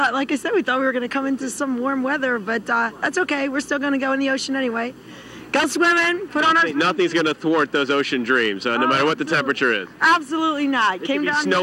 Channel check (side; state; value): both; identical; correlation 1.00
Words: like I said, we thought we were going to come into some warm weather, but that's okay. We're still going to go in the ocean anyway. Go swimming, put on our... Nothing's going to thwart those ocean dreams, no matter what the temperature is. Absolutely not. It could be